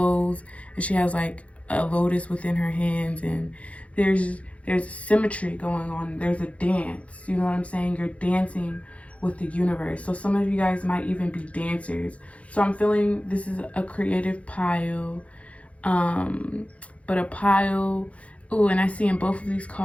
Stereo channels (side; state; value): right; late; 0.064 ms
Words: and she has like a lotus within her hands, and there's symmetry going on. There's a dance. You know what I'm saying? You're dancing with the universe. So some of you guys might even be dancers. So I'm feeling this is a creative pile. But a pile. Ooh, and I see in both of these